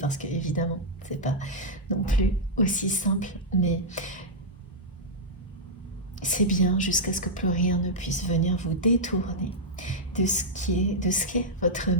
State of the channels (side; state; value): both; normal; correlation -0.07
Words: que évidemment, c'est pas non plus aussi simple, mais c'est bien jusqu'à ce que plus rien ne puisse venir vous détourner de ce qu'est votre